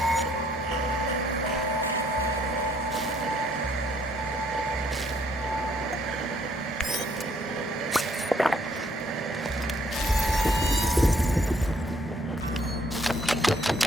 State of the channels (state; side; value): normal; both; correlation 0.66